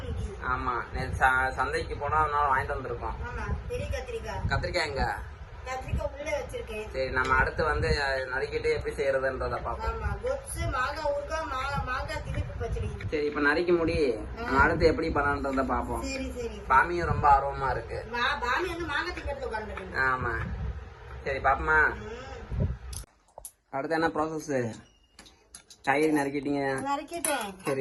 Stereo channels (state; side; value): identical; both; correlation 1.00